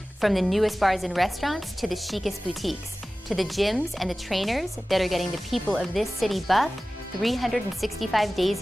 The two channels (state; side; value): normal; both; correlation 0.97